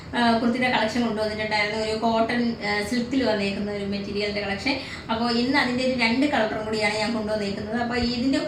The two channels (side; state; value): both; identical; correlation 1.00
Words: കുർത്തിയുടെ കളക്ഷൻ കൊണ്ടുവന്നിട്ടുണ്ടായിരുന്നു. ഒരു കോട്ടൺ സിൽക്കിൽ വന്നേക്കുന്ന ഒരു മെറ്റീരിയലിൻ്റെ കളക്ഷൻ. അപ്പോൾ ഇന്ന് അതിൻ്റെ ഒരു 2 കളറും കൂടിയാണ് ഞാൻ കൊണ്ടുവന്നേക്കുന്നത്. അപ്പോൾ ഇതിൻ്റെ